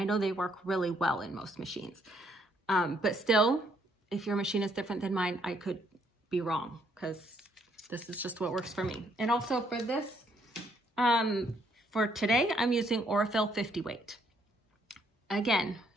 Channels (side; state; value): both; normal; correlation 0.70